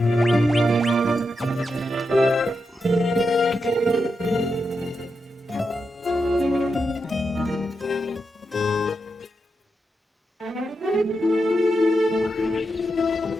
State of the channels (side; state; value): both; normal; correlation 0.86